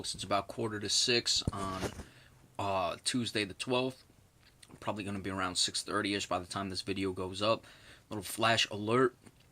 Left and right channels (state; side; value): identical; both; correlation 1.00